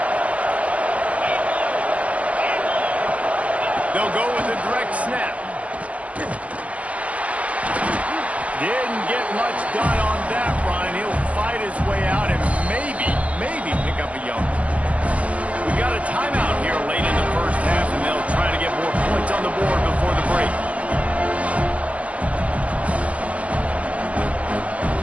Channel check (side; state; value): left; late; 0.069 ms